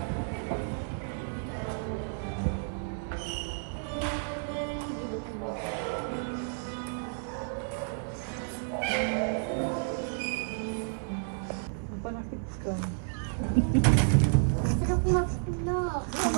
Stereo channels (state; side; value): silent; left; digital silence